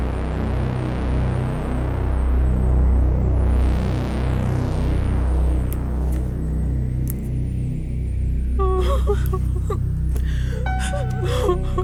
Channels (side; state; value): both; identical; correlation 1.00